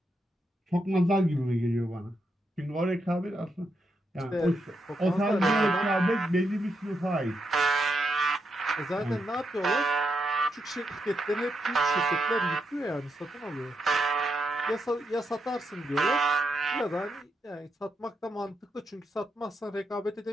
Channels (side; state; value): both; normal; correlation 0.83